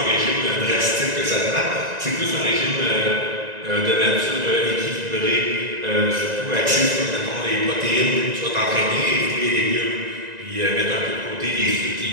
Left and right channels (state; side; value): late; left; 1.9 ms